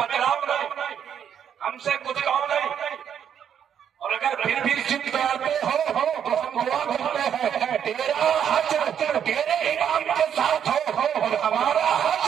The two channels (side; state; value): left; quieter; 8.7 dB